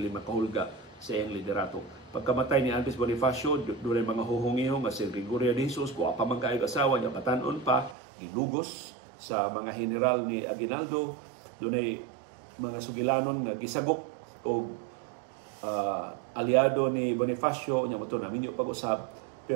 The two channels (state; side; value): drops out; left; at 8.0 s